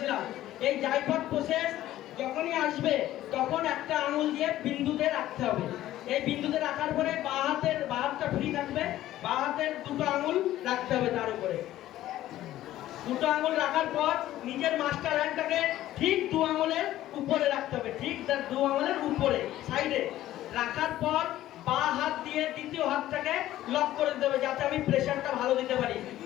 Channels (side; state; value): right; quieter; 14.0 dB